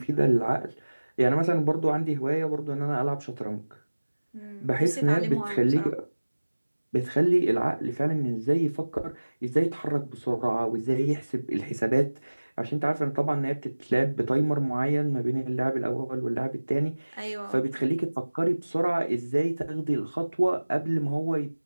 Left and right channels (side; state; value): both; inverted; correlation -1.00